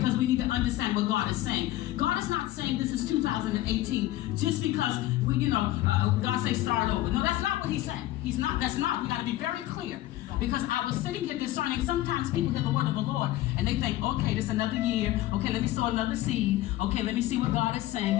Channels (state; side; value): quieter; right; 15.6 dB